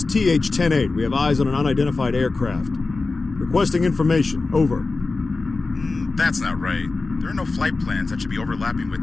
TH-108. We have eyes on an unidentified aircraft. Requesting information. Over. That's not right. There are no flight plans that should be overlapping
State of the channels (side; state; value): right; quieter; 3.7 dB